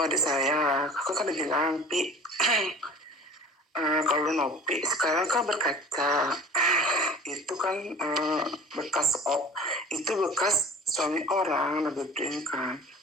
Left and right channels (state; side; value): normal; both; correlation 0.42